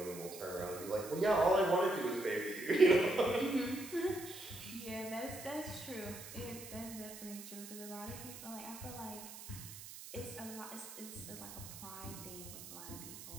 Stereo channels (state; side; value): noise; right; hiss, 12 dB below the sound